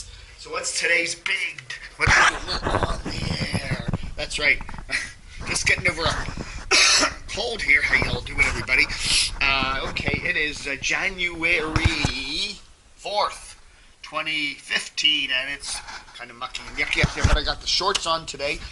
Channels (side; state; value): both; identical; correlation 1.00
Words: So what's today's what on the air? That's right, just getting over a cold here. How y'all doing, everybody? Okay, it is January 4th, 2015, and it's kind of mucky and yucky up there, but I got the shorts on today